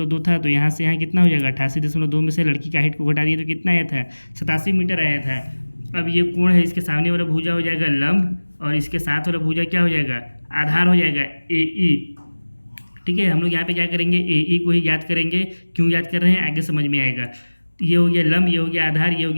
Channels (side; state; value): both; inverted; correlation -1.00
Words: था, तो यहाँ से यहाँ कितना हो जाएगा 88.2 में से लड़की का हाइट को घटा दिए तो कितना आया था 87 मीटर आया था। अब ये कोण है, इसके सामने वाला भुजा हो जाएगा लंब और इसके साथ वाला भुजा क्या हो जाएगा आधार हो जाएगा ए ई, ठीक है। हम लोग यहाँ पे क्या करेंगे ए ई को ही याद करेंगे। क्यों याद कर रहे हैं आगे समझ में आएगा। ये हो गया लंब, ये हो गया आधार, ये हो